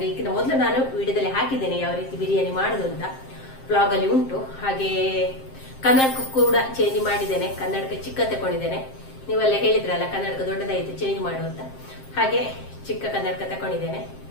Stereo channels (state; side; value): late; right; 7.6 ms